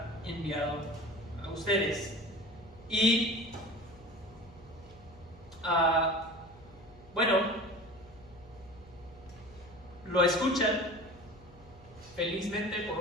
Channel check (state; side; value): noise; left; hum, 22 dB below the sound